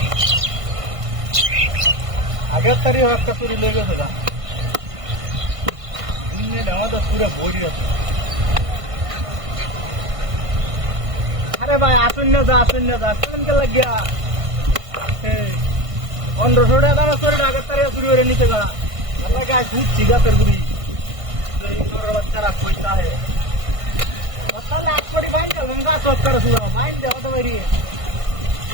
আগের তারিখ একটা চুরি লেগে গেছে গা আমাদের পুরো বই আছে আরে ভাই আসুন না যা কেমনকে লাগিয়া 1500 টাকা দাম চুরি আগের তারিখ চুরি করে নিতে গা গাছ ঘুরছি গাছের গুড়ি বাচ্চারা পয়সা হে তাহলে এক কোটি বাইন দেবো গাছ করে শুরু বাইন দেওয়া তো বাইরে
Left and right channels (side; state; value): left; late; 1.5 ms